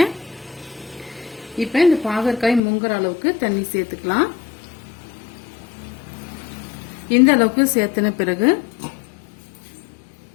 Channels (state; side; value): drops out; right; at 2.6 s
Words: இப்போ இந்த பாகற்காய் முங்குற அளவுக்கு தண்ணி சேர்த்துக்கலாம். இந்த அளவுக்கு சேர்த்தன பிறகு